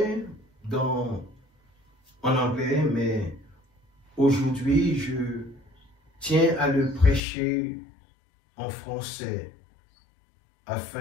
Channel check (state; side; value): drops out; right; at 7.2 s